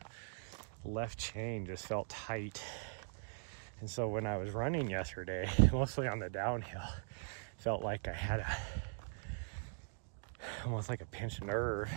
left chain just felt tight. And so when I was running yesterday, mostly on the downhill, felt like I had almost like a pinched nerve.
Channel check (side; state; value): left; silent; digital silence